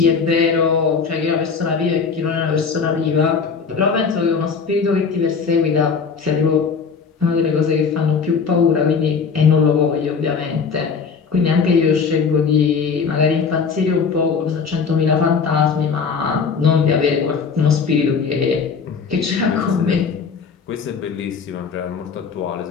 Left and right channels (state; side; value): quieter; right; 5.6 dB